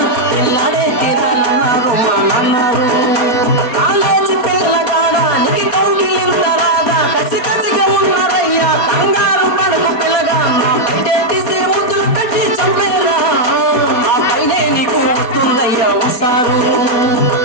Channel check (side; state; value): right; late; 4.2 ms